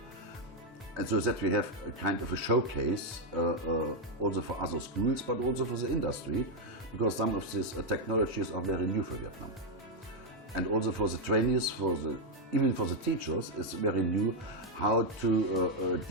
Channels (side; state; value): both; normal; correlation 0.00